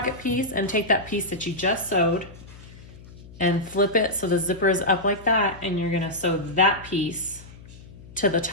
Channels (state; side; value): noise; left; hum, 19 dB below the sound